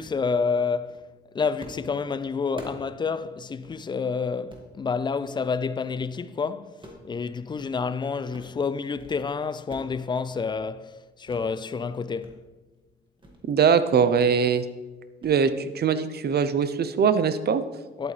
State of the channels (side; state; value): both; normal; correlation 0.33